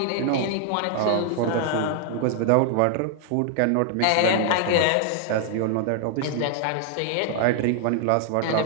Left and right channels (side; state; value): both; different; correlation 0.00